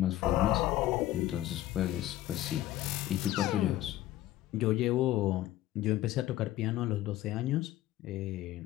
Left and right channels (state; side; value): quieter; right; 14.6 dB